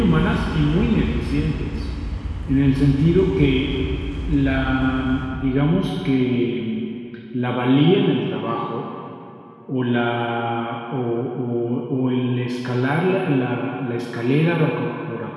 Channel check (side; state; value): both; identical; correlation 1.00